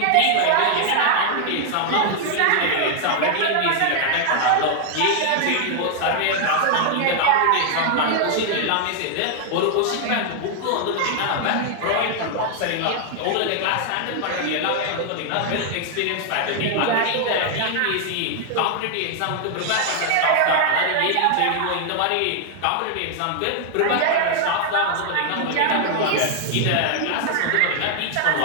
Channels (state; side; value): different; both; correlation 0.00